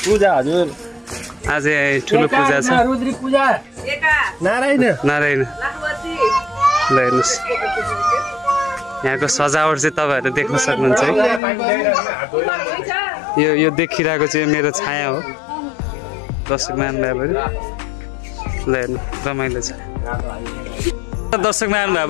पूजा हजुर आज ठुलो पूजा छ। रुद्री पूजा नारायण नारायण ल हेर्नुहोस् यहाँको सजावट चाहिँ तपाईँहरू देख्न सक्नुहुन्छ है। यो देखिरहेको चाहिँ मेरो छाया हो दर्शक महानुभावहरू। ल हेर्नु रमाइलो छ। दर्शक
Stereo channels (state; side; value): drops out; right; at 11.4 s